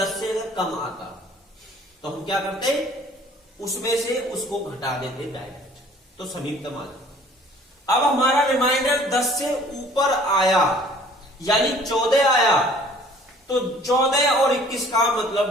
से अगर कम आता तो हम क्या करते? उसमें से उसको घटा देते डायरेक्ट, तो समीपतम आ जाता। अब हमारा रिमाइंडर 10 से ऊपर आया यानी 14 आया, तो 14 और 21 का मतलब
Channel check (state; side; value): normal; both; correlation 0.53